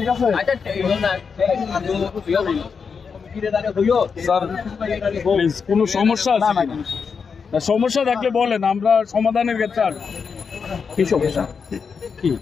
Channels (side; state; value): right; quieter; 5.8 dB